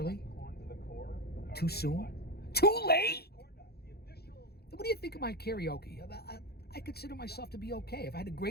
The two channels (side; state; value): right; late; 0.46 ms